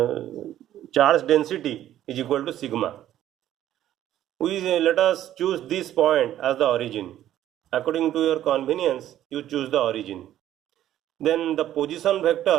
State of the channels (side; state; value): left; quieter; 12.3 dB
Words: charge density is equal to sigma. Let us choose this point as the origin. According to your convenience, you choose the origin. Then the position vector